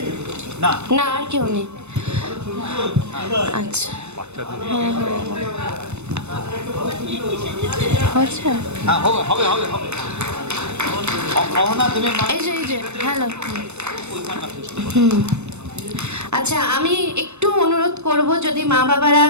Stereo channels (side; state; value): left; late; 0.81 ms